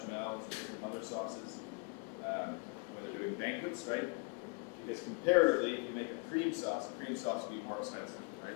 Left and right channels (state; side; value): quieter; right; 30.6 dB